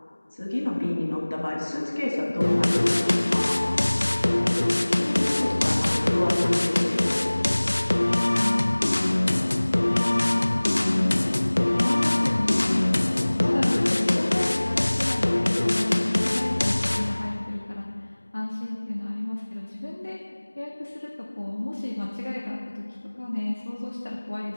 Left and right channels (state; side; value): inverted; both; correlation -1.00